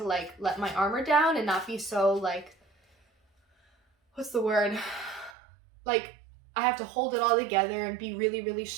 like let my armor down and not be so like, what's the word? Like, I have to hold it all together and be really, really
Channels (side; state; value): left; drops out; at 5.4 s